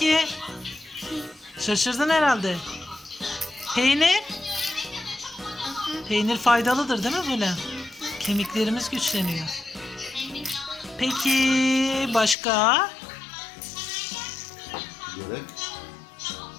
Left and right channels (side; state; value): right; drops out; at 12.4 s